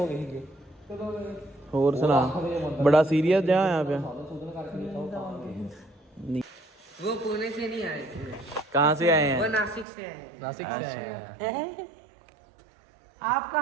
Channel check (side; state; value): left; drops out; at 9.9 s